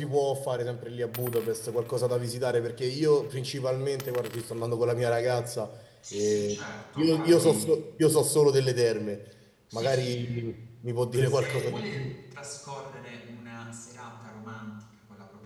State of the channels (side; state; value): both; identical; correlation 1.00